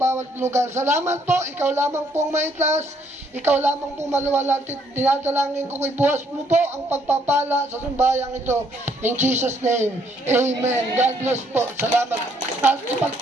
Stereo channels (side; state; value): both; normal; correlation 0.68